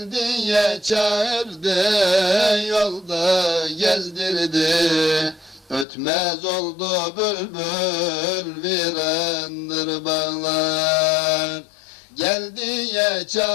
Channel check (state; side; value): drops out; right; at 5.9 s